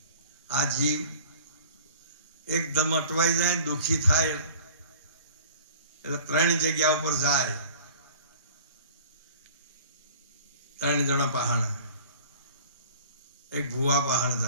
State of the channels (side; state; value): both; inverted; correlation -0.46